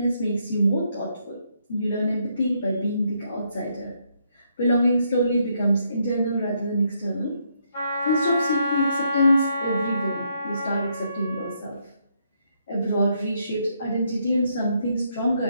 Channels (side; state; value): both; inverted; correlation -0.75